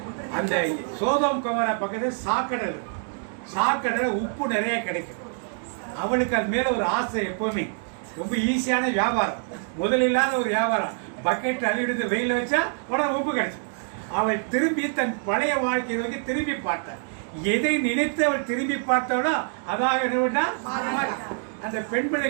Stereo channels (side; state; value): left; silent; 61 dB below the other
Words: அந்த சோதோம் குமரா பக்கத்துல சாக்கடல் உப்பு நிறைய கிடைக்கும். அவளுக்கு அது மேல ஒரு ஆசை. எப்பவுமே ரொம்ப ஈஸியான வியாபாரம், முதலில்லாத ஒரு வியாபாரம். பக்கெட் அள்ளிவிடுத்து வெயில் வச்சா உடனே உப்பு கிடைக்கும். அவள் திரும்பி தன் பழைய வாழ்க்கையை நோக்கி திரும்பி பார்த்தாள். எதை நினைத்து அவள் திரும்பி பார்த்தவளோ அதாக அந்த பெண்